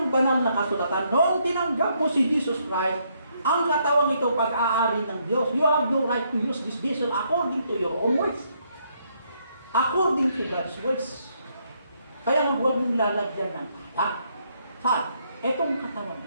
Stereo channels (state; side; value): inverted; both; correlation -0.73